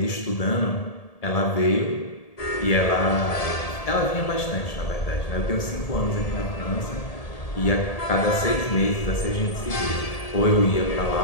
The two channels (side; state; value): right; late; 1.8 ms